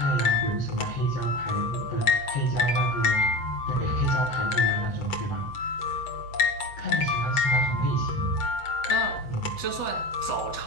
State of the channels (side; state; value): right; late; 8.0 ms